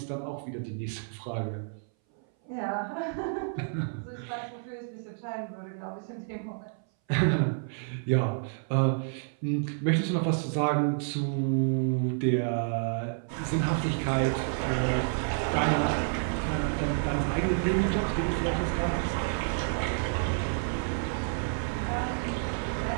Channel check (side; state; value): left; silent; 58 dB below the other